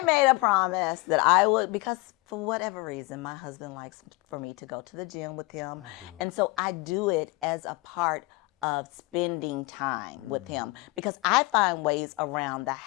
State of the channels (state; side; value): quieter; right; 24.6 dB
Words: made a promise that I would, because for whatever reason, my husband likes for me to go to the gym with him. And so I do it as a part of spending time with him, because I find ways around the